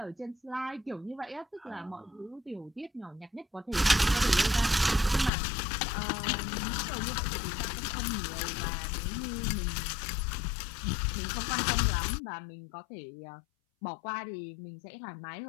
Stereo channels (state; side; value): drops out; right; at 5.3 s